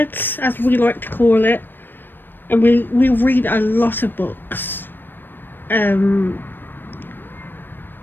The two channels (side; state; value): right; late; 0.095 ms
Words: as we like to call it, and we read a lot of books. I